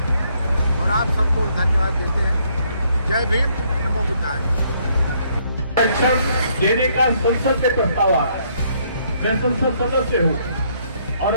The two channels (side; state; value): both; inverted; correlation -0.69